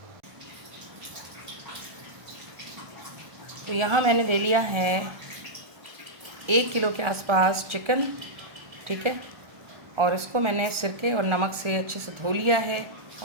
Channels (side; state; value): left; late; 1.4 ms